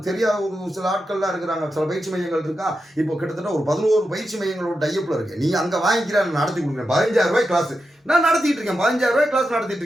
தெரியாத ஒரு சில ஆட்கள்லாம் இருக்கிறாங்க, சில பயிற்சி மையங்கள் இருக்கா. இப்போ கிட்டத்தட்ட ஒரு 11 பயிற்சி மையங்களோட டைப்பில் இருக்கேன். நீ அங்கே வாங்கிக்கிற நடத்தி கொடுக்குறேன். 15,000 ரூபாய் கிளாஸ் நான் நடத்திட்டு இருக்கேன், 15,000 ரூபாய் கிளாஸ் நடத்திட்டு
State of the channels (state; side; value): normal; both; correlation 0.88